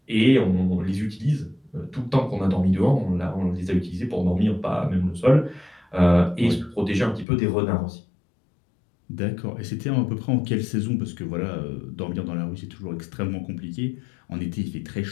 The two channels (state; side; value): drops out; right; at 7.2 s